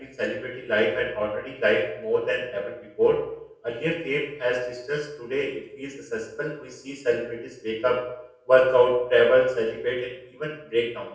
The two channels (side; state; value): both; identical; correlation 1.00